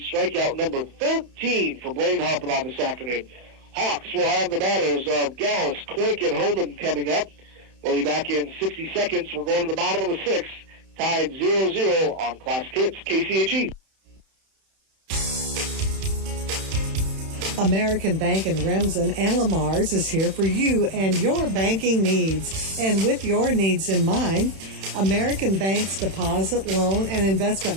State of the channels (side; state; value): left; late; 31 ms